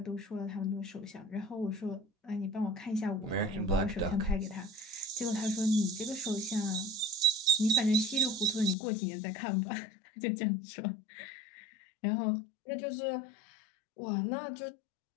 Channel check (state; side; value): drops out; right; at 8.8 s